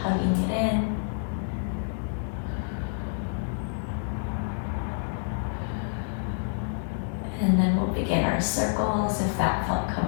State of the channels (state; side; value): silent; right; 59 dB below the other